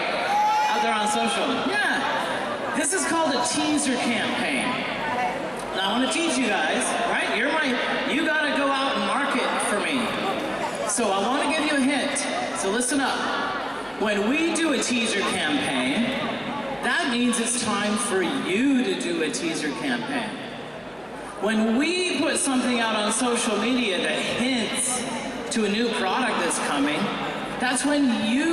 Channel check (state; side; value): identical; both; correlation 1.00